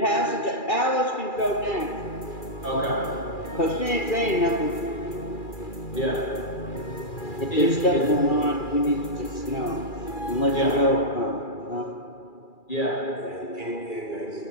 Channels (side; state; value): right; late; 2.4 ms